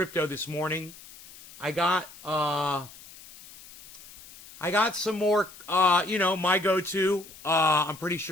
this morning. I got some more, you know, my go-to. I'm pretty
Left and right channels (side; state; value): left; noise; hiss, 19 dB below the sound